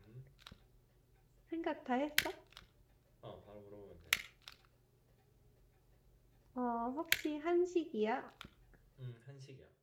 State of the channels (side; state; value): both; identical; correlation 1.00